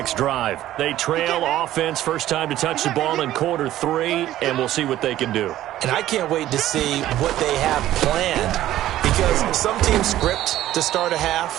drive. They trail offense, first time to touch the ball in quarter 3, and we'll see what they can do. And I can't wait to see what they have planned, because some teams script to start a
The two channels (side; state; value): left; quieter; 13.7 dB